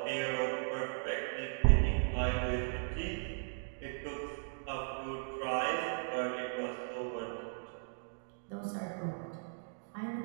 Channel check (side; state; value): left; silent; digital silence